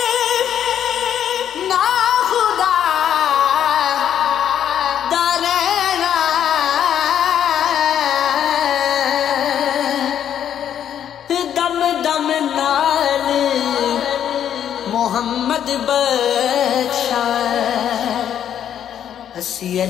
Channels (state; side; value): quieter; right; 9.7 dB